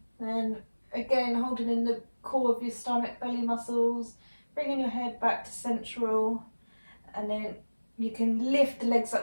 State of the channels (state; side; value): inverted; both; correlation -1.00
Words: Then again, holding in the core of your stomach, belly muscles, bringing your head back to central, and then you can lift the legs